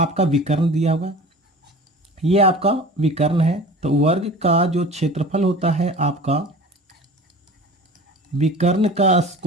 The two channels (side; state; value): both; normal; correlation 0.40